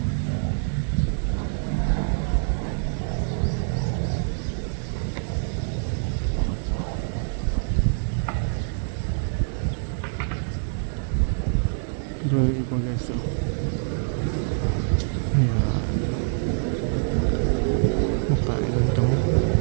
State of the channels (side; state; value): left; silent; 62 dB below the other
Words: Doon yung iba guys, so. Ayan. Makain ng damo.